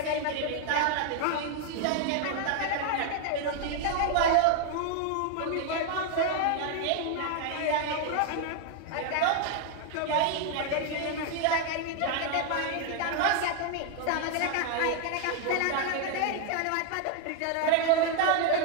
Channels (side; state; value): both; different; correlation 0.00